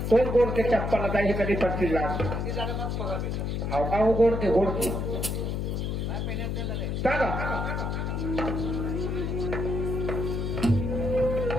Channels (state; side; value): noise; left; hum, 1 dB below the sound